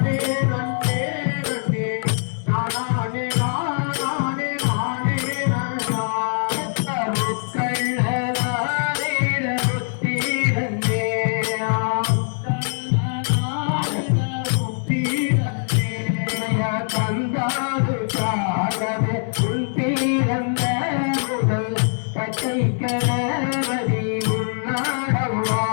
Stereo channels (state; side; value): silent; right; 63 dB below the other